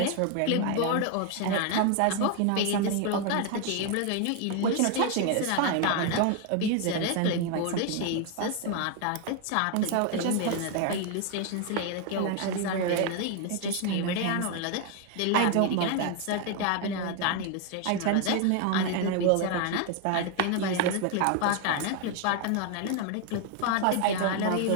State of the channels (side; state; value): both; different; correlation 0.01